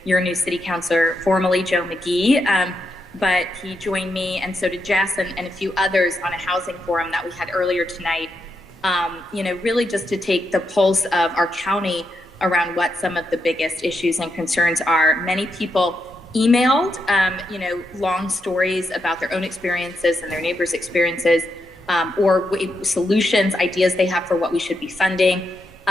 your new city councilor, formerly Joe McGee, but he joined me, and so did Jess and a few others on a housing forum that we had earlier tonight, really just to take the pulse of our county around what some of the biggest issues and concerns are. Many people emailed, long stories about their own experiences and their neighbors' experiences, or solutions, ideas they have for what we should be funding,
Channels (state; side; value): normal; both; correlation 0.83